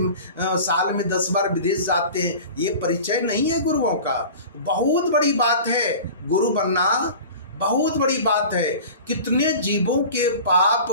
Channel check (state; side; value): inverted; both; correlation -0.38